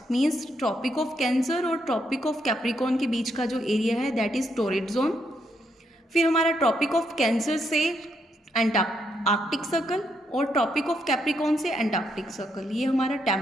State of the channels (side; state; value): both; normal; correlation 0.77